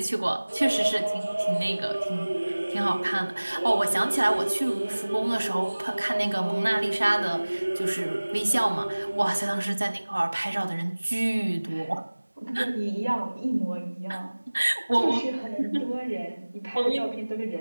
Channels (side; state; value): both; inverted; correlation -1.00